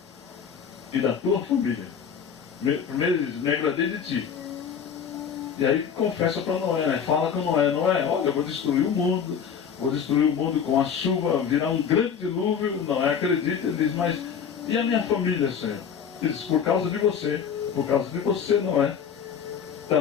e da tua família. Primeiro ele diz: me agradei de ti. E aí confessa para Noé, né? Fala com Noé: Noé, olha, eu vou destruir o mundo com a chuva, virar um grande dilúvio. Noé acredita, ele diz: mas e a minha família, Senhor? Ele diz: por causa de você, Noé,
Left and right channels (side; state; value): right; quieter; 7.3 dB